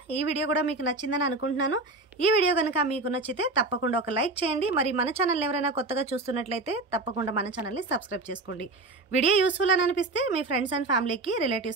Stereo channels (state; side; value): quieter; left; 3.2 dB